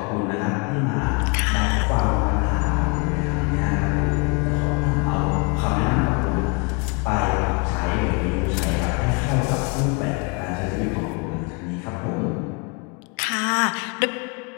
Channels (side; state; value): right; quieter; 31.5 dB